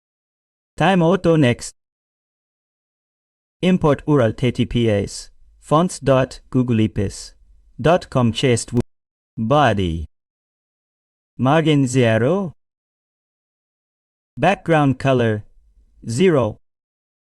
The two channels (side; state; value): both; identical; correlation 1.00